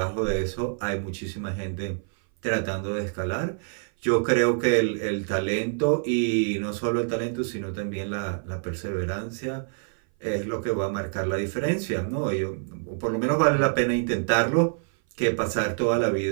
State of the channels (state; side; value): silent; left; 58 dB below the other